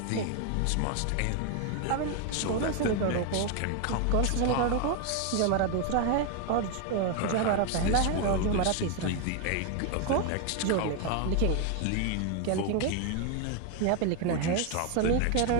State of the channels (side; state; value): both; different; correlation 0.01